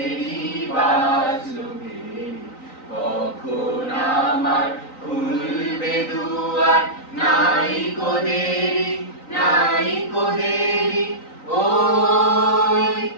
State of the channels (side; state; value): right; late; 3.9 ms